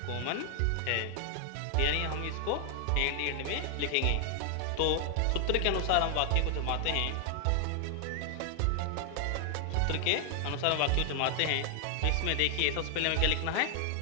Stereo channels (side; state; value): both; different; correlation 0.00